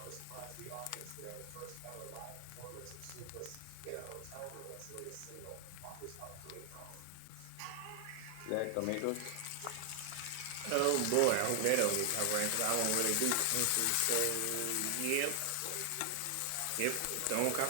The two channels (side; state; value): both; different; correlation 0.00